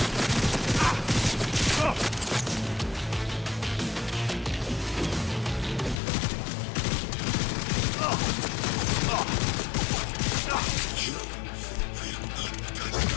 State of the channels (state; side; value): drops out; right; at 6.0 s